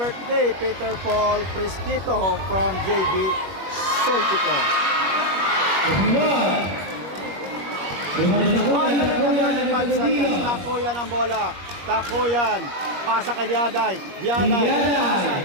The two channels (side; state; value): left; late; 21 ms